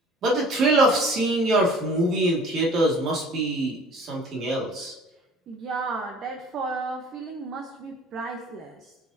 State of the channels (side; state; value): both; normal; correlation 0.48